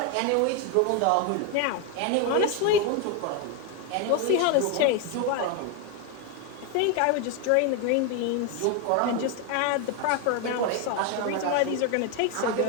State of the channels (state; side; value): different; both; correlation 0.01